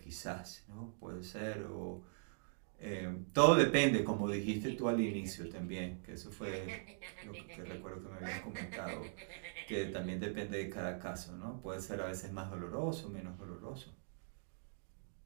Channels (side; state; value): left; silent; digital silence